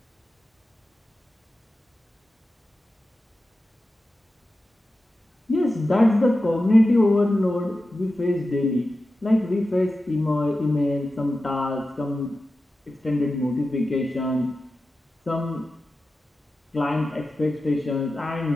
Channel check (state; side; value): normal; both; correlation 0.93